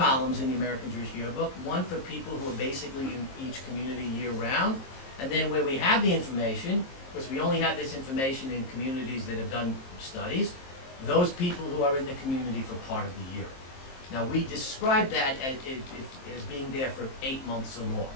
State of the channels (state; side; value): late; right; 23 ms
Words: in the American Jewish Yearbook, one for people who are basically in each community year-round, and then where we have the information, because we only have this information in communities that have done studies, those people who are in the community for part of the year. Now we describe that as being there for 8 months or more.